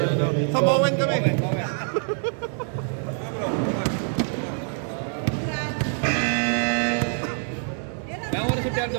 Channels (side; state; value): left; silent; 57 dB below the other